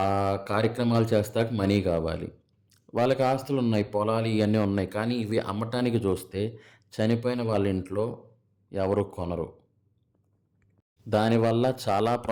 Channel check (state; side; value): identical; both; correlation 1.00